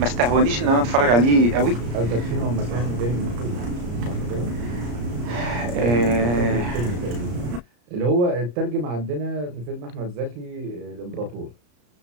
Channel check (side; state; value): left; late; 34 ms